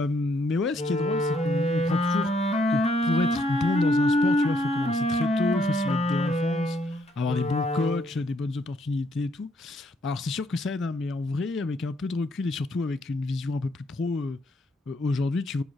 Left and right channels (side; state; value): both; normal; correlation 0.71